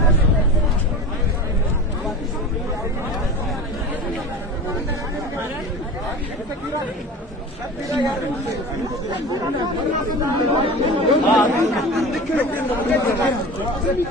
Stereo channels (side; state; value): both; normal; correlation 0.33